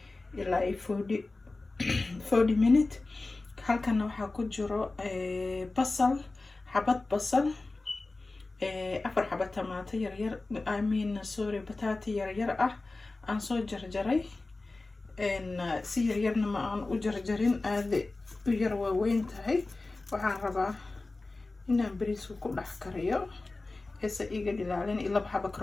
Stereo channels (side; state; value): right; quieter; 3.3 dB